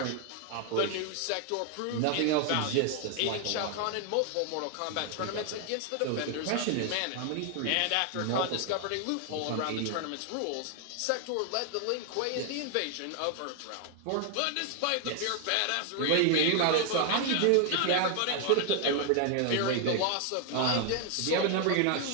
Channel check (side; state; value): both; different; correlation 0.00